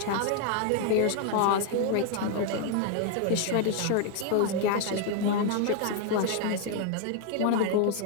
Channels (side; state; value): both; different; correlation 0.00